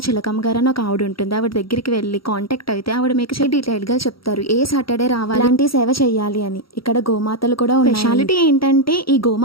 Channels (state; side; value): late; right; 0.75 ms